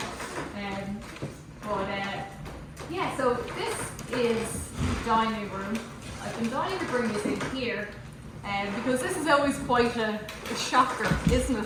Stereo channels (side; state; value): both; identical; correlation 1.00